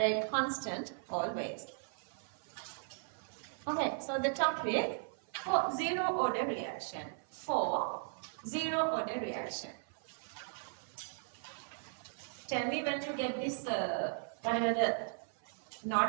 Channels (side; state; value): left; silent; 53 dB below the other